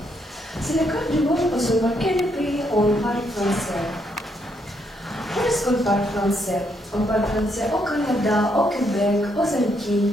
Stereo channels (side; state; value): both; normal; correlation 0.75